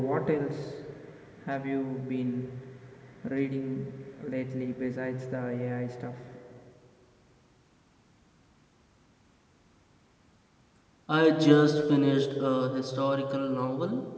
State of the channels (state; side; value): identical; both; correlation 1.00